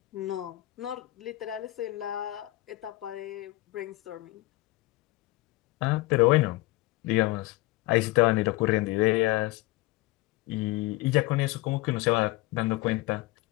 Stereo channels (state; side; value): quieter; right; 19.7 dB